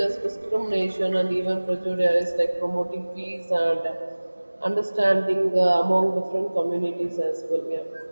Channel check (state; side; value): inverted; both; correlation -1.00